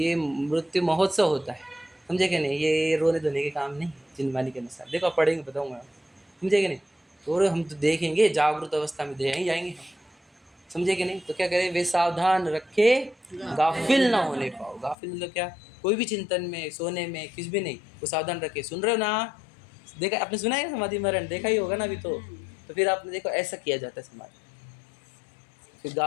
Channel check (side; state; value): right; drops out; at 15.0 s